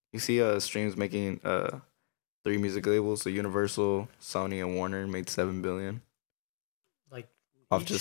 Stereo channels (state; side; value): silent; right; digital silence